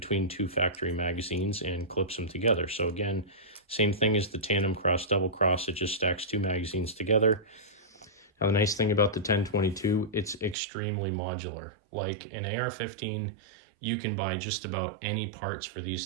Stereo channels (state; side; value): drops out; left; at 10.6 s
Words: 2 factory magazines and clips them together. So again, same thing as the tandem cross, double cross, it just stacks 2 magazines together. Now the nice thing about the 1022, it's extremely modular. Like an AR-15, you can buy just about any parts for